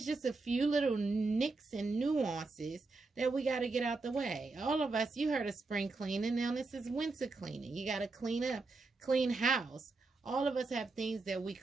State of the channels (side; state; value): left; quieter; 3.7 dB